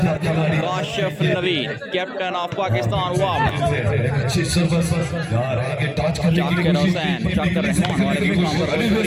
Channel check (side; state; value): both; identical; correlation 1.00